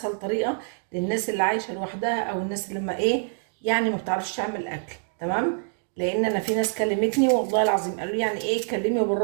طريقه للناس اللي عايشه لوحدها او الناس اللي ما ايه يعني ما بتعرفش تعمل اكل. تمام، لان انا في ناس كلمتني والله العظيم قالوا لي يعني ايه اتكلمي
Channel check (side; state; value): left; silent; 61 dB below the other